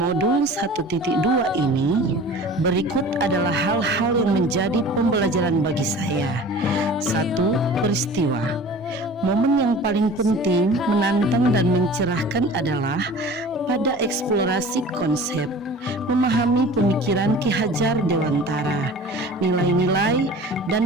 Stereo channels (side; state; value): both; normal; correlation 0.41